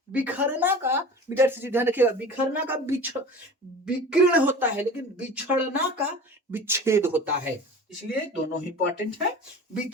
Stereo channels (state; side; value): normal; both; correlation 0.38